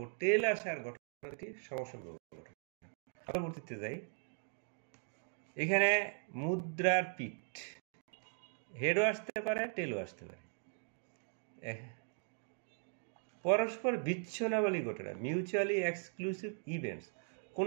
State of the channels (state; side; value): silent; left; 52 dB below the other